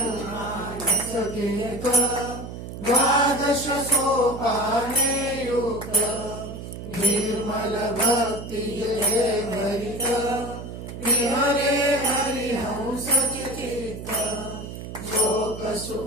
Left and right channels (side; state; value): right; noise; hum, 10 dB below the sound